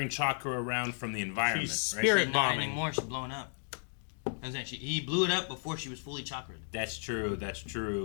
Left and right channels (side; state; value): right; silent; 55 dB below the other